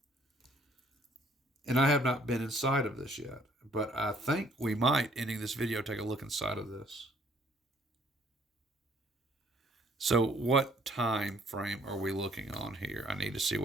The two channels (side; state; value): both; normal; correlation 0.62